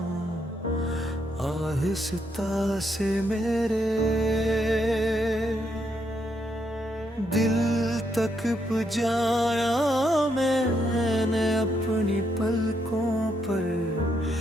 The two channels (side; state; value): both; normal; correlation 0.77